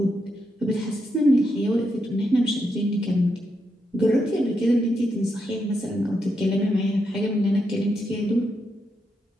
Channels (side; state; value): both; normal; correlation 0.82